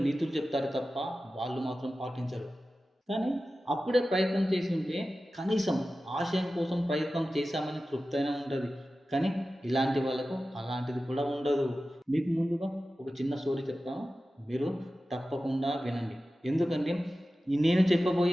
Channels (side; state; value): both; normal; correlation 0.94